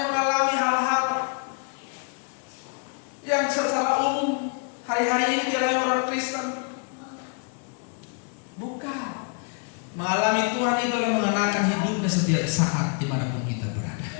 mengalami hal-hal yang secara umum hari-hari ini dialami orang Kristen, bukan. Mengalami Tuhan itu adalah mengenakan hidupnya setiap saat dimanapun kita berada.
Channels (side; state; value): right; quieter; 39.5 dB